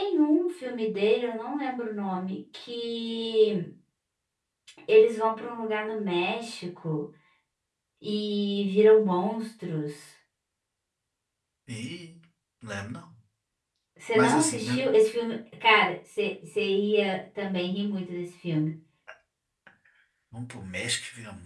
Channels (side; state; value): both; identical; correlation 1.00